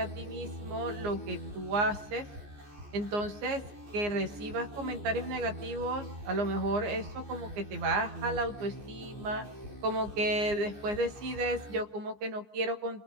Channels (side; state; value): left; late; 15 ms